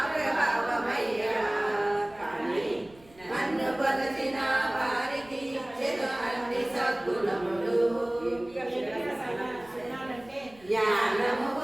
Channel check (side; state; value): right; noise; rumble, 26 dB below the sound